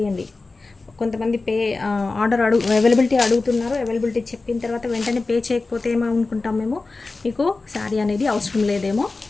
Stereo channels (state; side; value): quieter; right; 3.6 dB